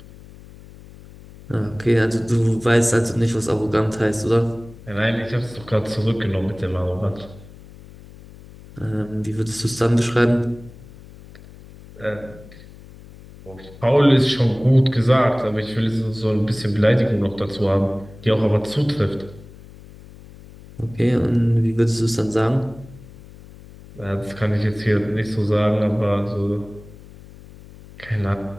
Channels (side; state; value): left; noise; hum, 20 dB below the sound